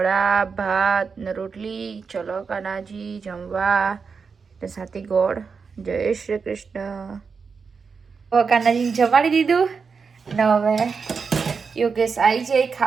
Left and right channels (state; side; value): quieter; left; 5.4 dB